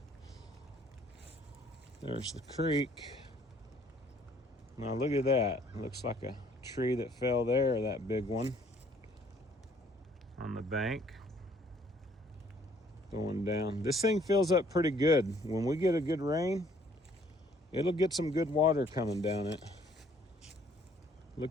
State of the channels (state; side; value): normal; both; correlation 0.61